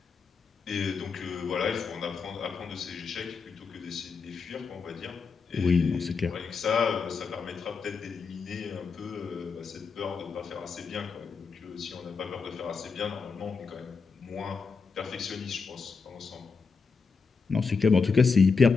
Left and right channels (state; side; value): quieter; right; 5.1 dB